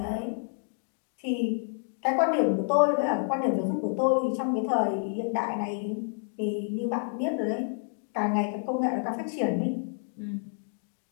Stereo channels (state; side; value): silent; right; digital silence